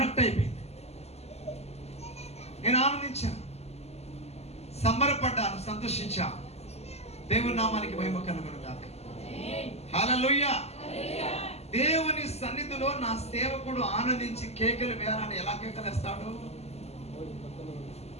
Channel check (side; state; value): right; late; 0.30 ms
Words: అయిపోయింది. నేను ఆనందించాను, సంబరపడ్డాను, సంతోషించాను. దేవుని నామానికి మహిమ కలుగును గాక. హల్లెలూయా. దేవుని సన్నిధిలో నా సేవకుడు ఆనందించి కేకలు వేయాలని ఎలా కేకలేస్తాడు?